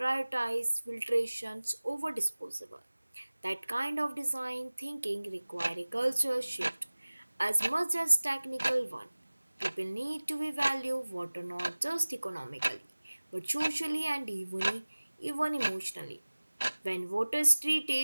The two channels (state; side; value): inverted; both; correlation -1.00